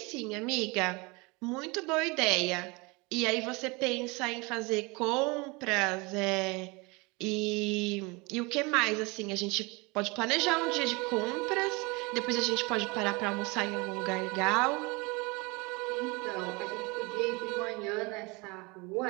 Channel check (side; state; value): left; quieter; 26.7 dB